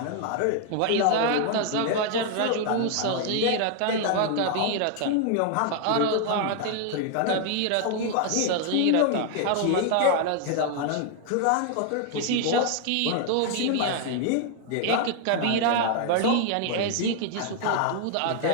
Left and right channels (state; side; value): different; both; correlation 0.00